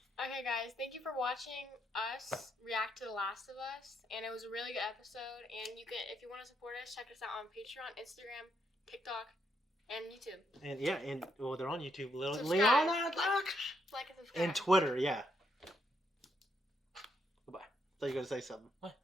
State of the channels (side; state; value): both; normal; correlation 0.77